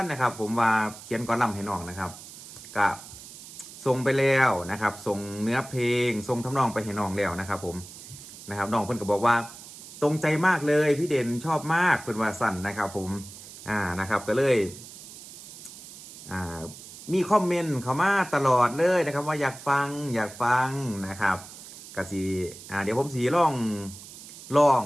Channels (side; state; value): right; noise; hiss, 16 dB below the sound